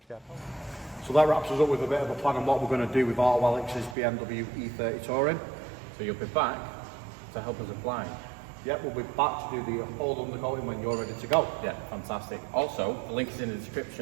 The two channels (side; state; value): left; drops out; at 4.0 s